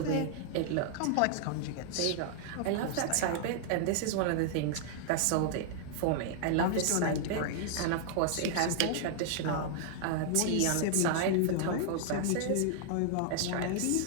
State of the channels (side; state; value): both; different; correlation -0.01